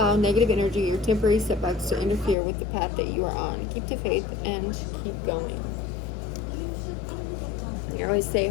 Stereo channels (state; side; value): drops out; right; at 2.4 s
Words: negative energy or temporary setbacks to interfere with the path that you are on. Keep the faith and keep going. I always say